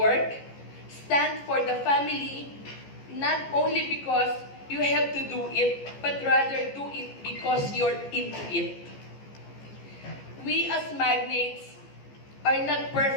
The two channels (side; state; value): right; late; 15 ms